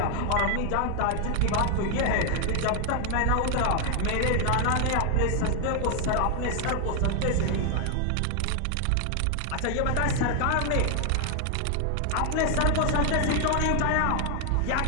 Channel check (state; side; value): different; both; correlation 0.00